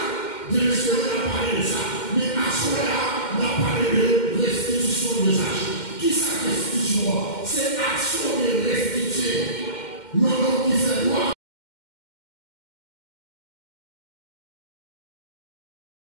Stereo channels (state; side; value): late; right; 2.1 ms